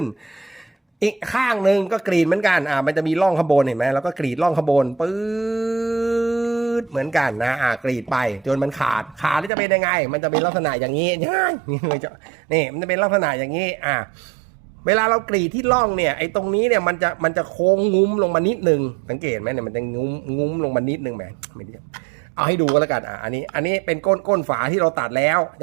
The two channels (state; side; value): drops out; left; at 9.5 s